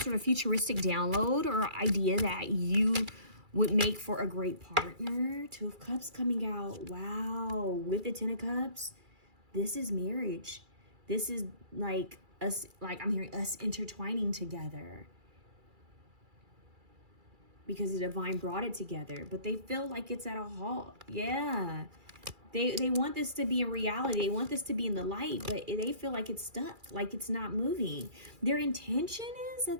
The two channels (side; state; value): left; late; 2.3 ms